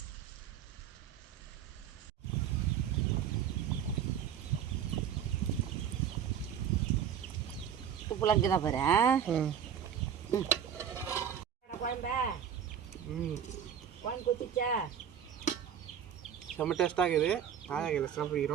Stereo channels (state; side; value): quieter; left; 8.6 dB